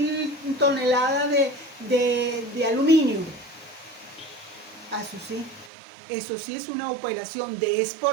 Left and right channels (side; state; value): left; drops out; at 5.7 s